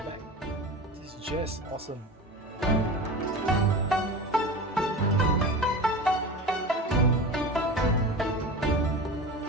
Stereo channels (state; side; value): normal; both; correlation 0.31